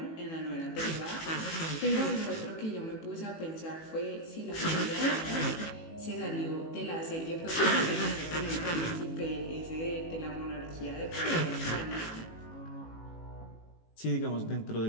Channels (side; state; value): right; late; 18 ms